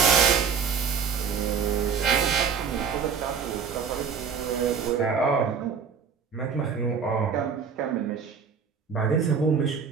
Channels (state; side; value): quieter; left; 6.5 dB